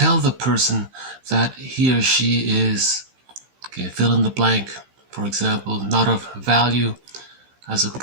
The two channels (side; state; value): left; late; 15 ms